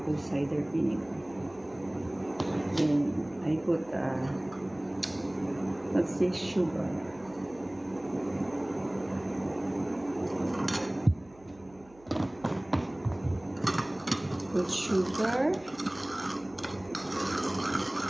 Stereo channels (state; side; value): noise; right; hum, 26 dB below the sound